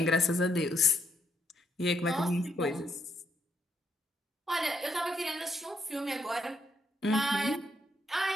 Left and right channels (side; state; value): both; normal; correlation 0.75